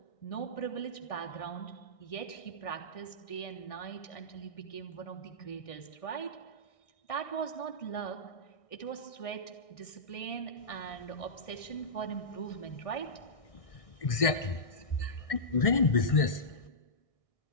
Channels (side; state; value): right; late; 1.6 ms